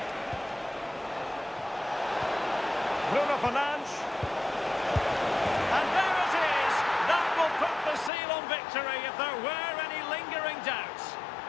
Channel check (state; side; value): drops out; right; at 8.1 s